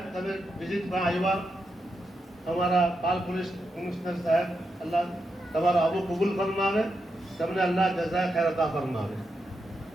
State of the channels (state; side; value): normal; both; correlation 0.85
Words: તમે વિઝિટ પર આવ્યા અમારા પાલ પોલીસ કમિશનર સાહેબ અલ્લાહ તમારો આવો કબૂલ ફરમાવે તમને અલ્લાહ જઝા ખૈર અતા ફરમાવે